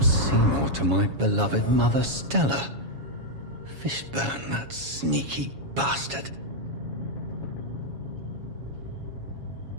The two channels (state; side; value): late; left; 7.2 ms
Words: Seymour to my beloved mother Stella. Fishburne, that sneaky bastard.